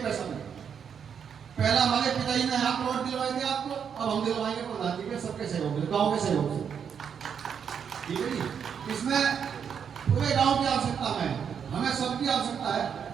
पैसा नहीं। पहला हमारे पिताजी ने यहाँ प्लॉट दिलवाए थे आपको, अब हम दिलवाएंगे प्रधान जी के सबके सहयोग से, गाँव के सहयोग से। ठीक है जी, इसमें पूरे गांव की आवश्यकता में, हमें सबकी आवश्यकता है।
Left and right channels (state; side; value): quieter; left; 7.4 dB